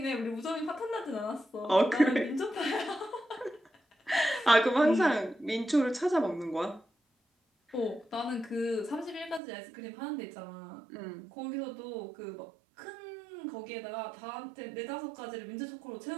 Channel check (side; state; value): left; drops out; at 9.4 s